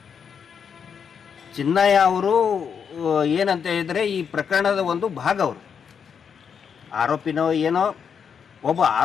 ಚಿನ್ನಯ್ಯ ಅವರು ಏನಂತ ಹೇಳಿದರೆ ಈ ಪ್ರಕರಣದ ಒಂದು ಭಾಗ, ಅವರು ಆರೋಪಿನೋ ಏನೋ, ಒಬ್ಬ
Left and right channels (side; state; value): right; quieter; 7.0 dB